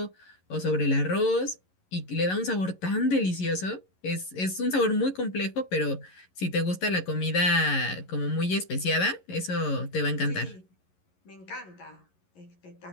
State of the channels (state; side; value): late; right; 11 ms